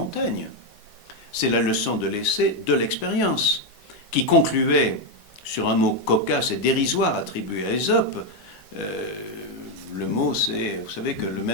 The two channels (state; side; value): normal; both; correlation 0.05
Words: C'est la leçon de l'essai de l'expérience, qui concluait sur un mot cocasse et dérisoire attribué à Ésope. Le mot, c'est, vous savez que le